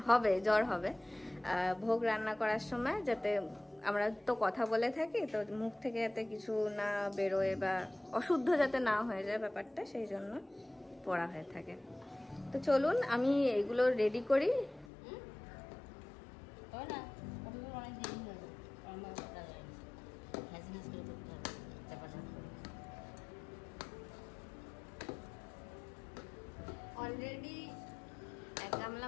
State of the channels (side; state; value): right; drops out; at 14.9 s